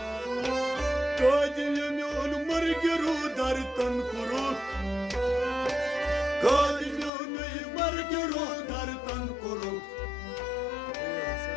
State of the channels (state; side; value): drops out; right; at 7.1 s